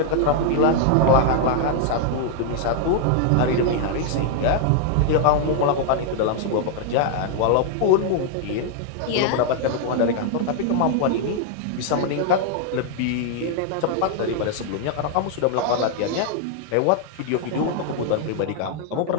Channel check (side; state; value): both; different; correlation 0.00